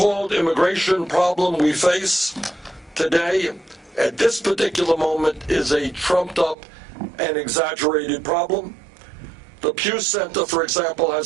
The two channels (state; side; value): drops out; left; at 6.6 s